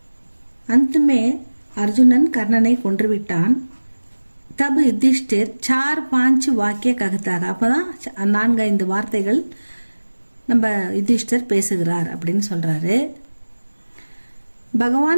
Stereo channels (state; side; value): inverted; both; correlation -1.00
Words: अंत में अर्जुनन கர்ணனை கொன்று விட்டான். तब युधिष्ठिर 4-5 வாக்கிய ககத்தாக, அப்பதான் 4-5 வார்த்தைகள் நம்ம யுதிஷ்டர் பேசுகிறார் அப்படின்னு சொல்றாரு.